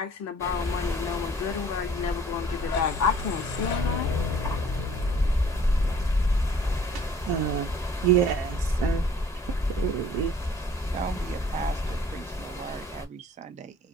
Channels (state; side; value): normal; both; correlation 0.54